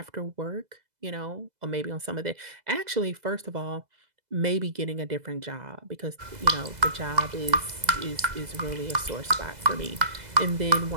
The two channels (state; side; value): late; left; 2.0 ms